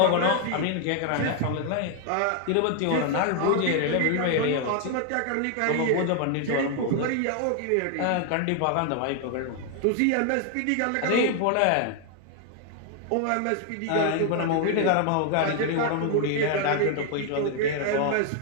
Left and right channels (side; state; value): both; different; correlation 0.00